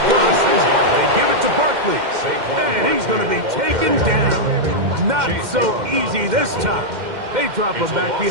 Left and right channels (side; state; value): left; late; 2.1 ms